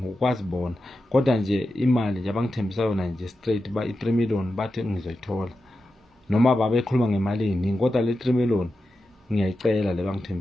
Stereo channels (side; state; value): both; normal; correlation 0.91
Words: ukwazi bona kodwa nje imali nje abangithembisa yona nje straight ba i3 million bathi ngizoyithola noma babekhuluma ngemali eningi kodwa le 3 million ngiyayicela le